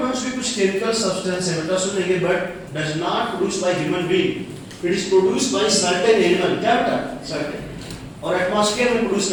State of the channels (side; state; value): both; identical; correlation 1.00